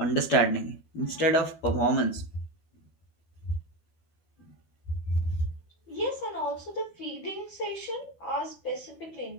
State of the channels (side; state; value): right; late; 12 ms